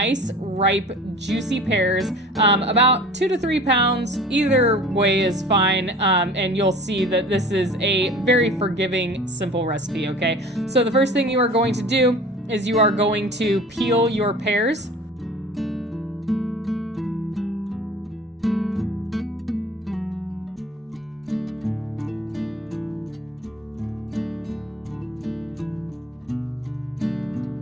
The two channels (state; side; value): normal; both; correlation 0.43